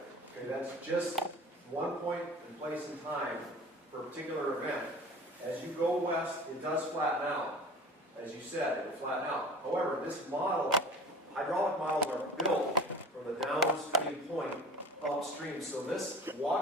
Okay, that's just one point in place in time for a particular event. As you go west, it does flatten out. As you said, it will flatten out. However, this model, hydraulic models are built from the downstream point upstream. So this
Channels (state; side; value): normal; both; correlation 0.39